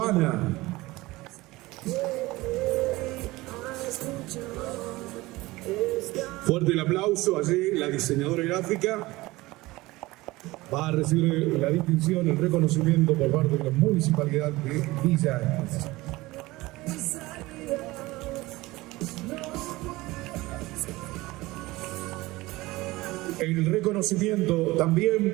Fuerte el aplauso. Allí la diseñadora gráfica va a recibir la distinción, el reconocimiento por parte de la Municipalidad de Villa Ancla. El reconocimiento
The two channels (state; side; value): quieter; left; 20.0 dB